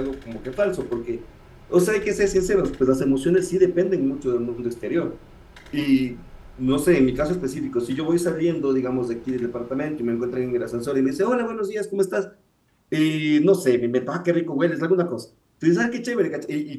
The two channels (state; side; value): identical; both; correlation 1.00